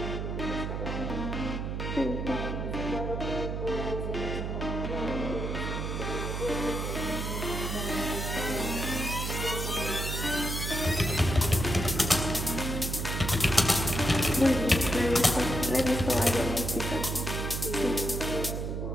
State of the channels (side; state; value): right; noise; hum, 3 dB below the sound